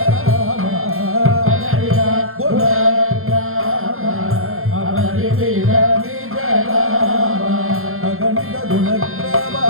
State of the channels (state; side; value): late; left; 0.62 ms